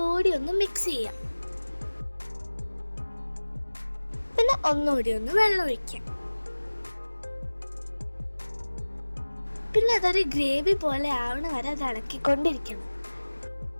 ഒന്ന് മിക്സ് ചെയ്യാം. പിന്നെ ഒന്നുകൂടി ഒന്ന് വെള്ളം ഒഴിക്കാം. പിന്നെ അതൊരു ഗ്രേവി പോലെ ആവണ വരെ അത് ഇളക്കിക്കൊണ്ടിരിക്കണം.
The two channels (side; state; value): both; inverted; correlation -1.00